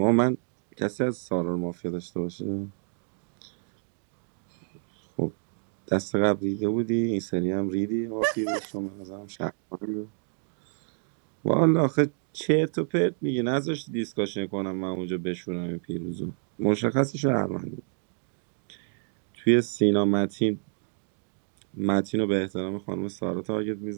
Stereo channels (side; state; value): left; silent; digital silence